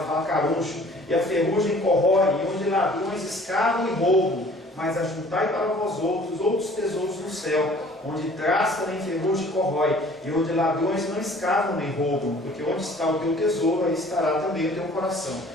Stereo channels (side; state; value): both; normal; correlation 0.52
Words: fala caruncho, e a ferrugem corrói, e onde ladrões escavam e roubam. Mas ajuntai para vós outros tesouros no céu, onde traça nem ferrugem corrói, e onde ladrões não escavam nem roubam, porque onde está o teu tesouro, aí estará também o teu coração.